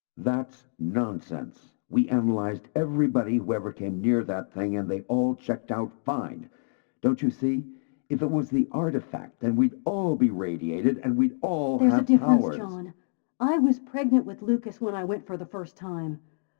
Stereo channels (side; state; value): right; silent; digital silence